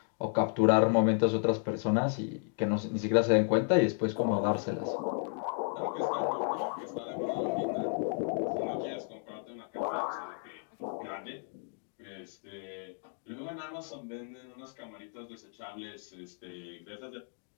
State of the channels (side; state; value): right; silent; 56 dB below the other